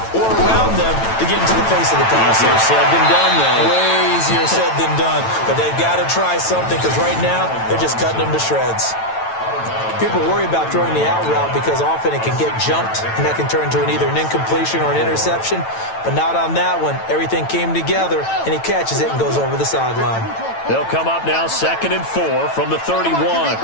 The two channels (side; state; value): right; late; 9.0 ms